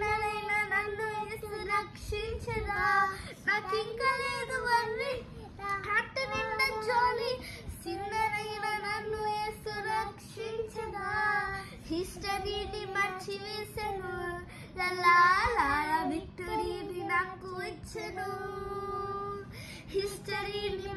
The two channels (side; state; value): both; identical; correlation 1.00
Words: నన్ను యేసు రక్షించదా నాకు ఇంకా లేదు వర్రీ హార్ట్ నిండా జాలీ సిన్నలైన నన్ను యేసు రక్షించదా హిస్టరీని మర్చివేసెను లలా విక్టరీని నాకు ఇచ్చెను హిస్టరీని